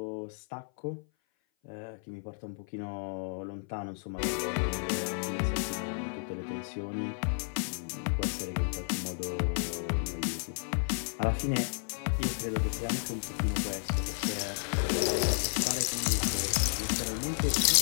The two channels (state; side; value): silent; right; 56 dB below the other